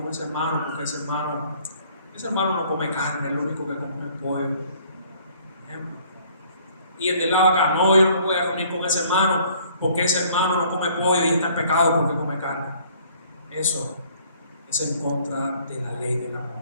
ese hermano porque ese hermano no come carne, es lo único que come pollo. Y el de lado acá, no, yo no me voy a reunir con ese hermano porque ese hermano no come pollo y está en pecado porque come carne. Eso es en contra de la ley del amor.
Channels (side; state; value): both; inverted; correlation -0.58